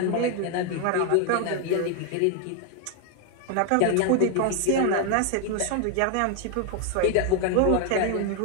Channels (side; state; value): both; different; correlation 0.01